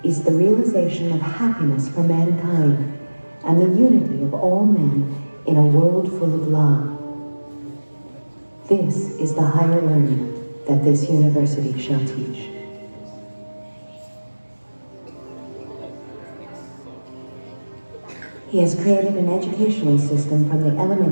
is the realization of happiness for mankind and the unity of all men in a world full of love. This is the higher learning that this university shall teach. He has created an educational system from the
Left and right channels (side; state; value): both; inverted; correlation -1.00